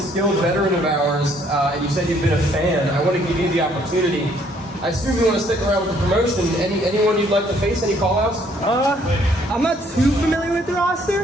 veteran of ours, and you said you've been a fan, I want to give you the opportunity. I assume you want to stick around with the promotion. Anyone you'd like to face? Any call-outs? I'm not too familiar with the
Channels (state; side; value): normal; both; correlation 0.64